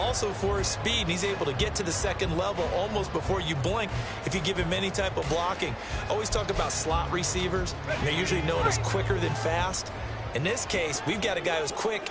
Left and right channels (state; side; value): identical; both; correlation 1.00